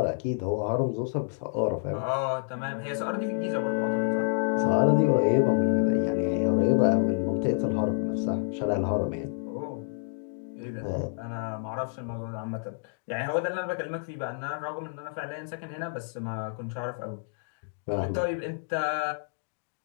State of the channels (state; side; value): silent; right; digital silence